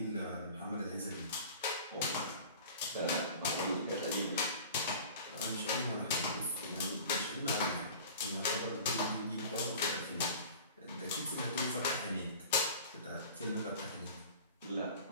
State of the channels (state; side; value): inverted; both; correlation -0.41